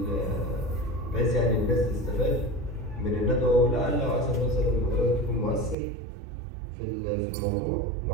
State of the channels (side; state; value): left; drops out; at 5.8 s